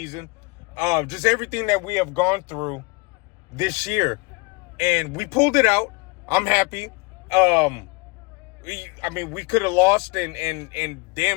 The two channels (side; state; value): right; quieter; 27.4 dB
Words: just everything that we have gone through this year, and we pulled it out. I'm happy. We could have lost and